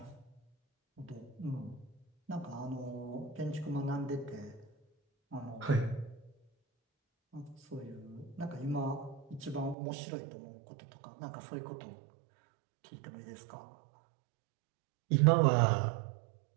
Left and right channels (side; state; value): left; drops out; at 9.8 s